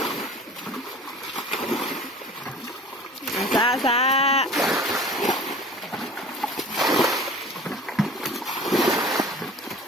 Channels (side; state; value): both; normal; correlation 0.42